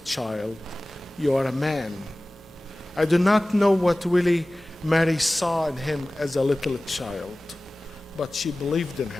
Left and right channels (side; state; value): both; normal; correlation 0.98